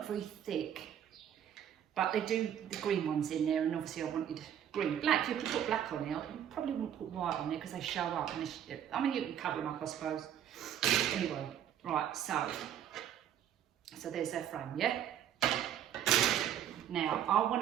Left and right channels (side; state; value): left; quieter; 9.9 dB